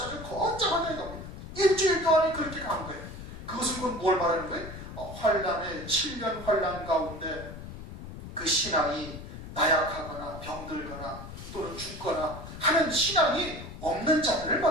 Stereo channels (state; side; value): noise; left; rumble, 11 dB below the sound